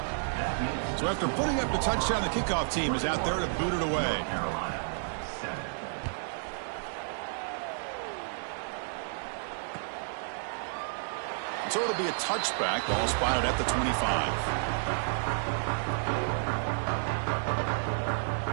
So after putting up the touchdown, the kickoff team is out there to boot it away. So it'll be a touchback, ball spotted at the 25.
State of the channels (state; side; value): silent; left; digital silence